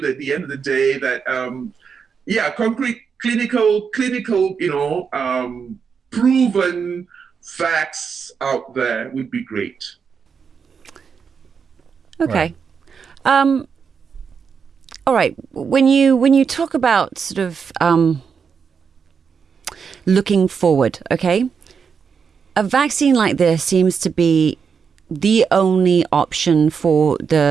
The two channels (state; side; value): quieter; left; 6.2 dB